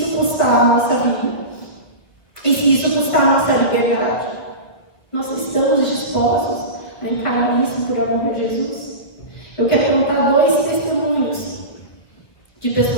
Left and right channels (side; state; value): right; late; 1.3 ms